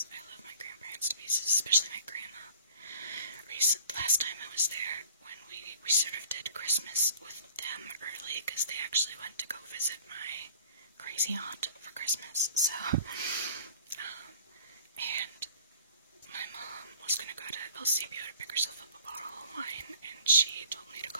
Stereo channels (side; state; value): both; inverted; correlation -0.50